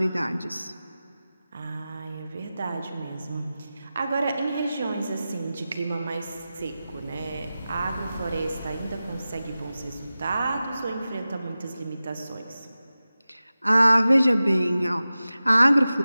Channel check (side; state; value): both; inverted; correlation -0.95